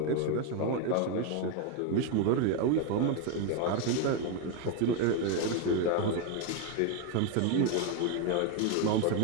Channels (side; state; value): both; different; correlation 0.02